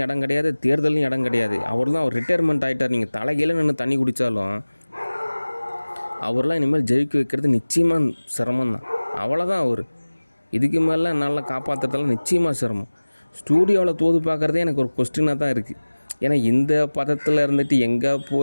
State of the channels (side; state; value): both; inverted; correlation -1.00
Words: இடம் கிடையாது, தேர்தலையும் இடம் கிடையாது. அவர் தான் அவர் ரிட்டையர்மெண்ட் ஆகிட்டார். நீங்கள் தலைகீழ நின்று தண்ணி குடித்தாலும் அவர்லாம் இனிமேல் ஜெயிக்க வைக்கிறது நிச்சயமாக சிரமம் தான். அவ்வளோதான் அவர். இதுக்கு மேலே நல்லா காப்பாற்றுறதெல்லாம் நிச்சயமாக சிரமம். ஸ்டூடியோவில் தோது பார்க்குறதே எனக்கு ஒரு கொஸ்டினாக தான் இருக்குது. ஏன்னா இந்த பதத்தில் இருந்துட்டு எங்கே